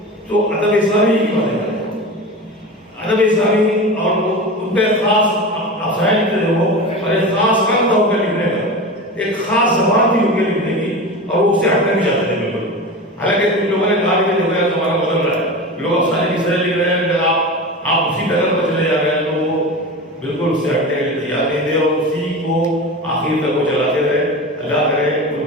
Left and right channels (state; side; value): normal; both; correlation 0.28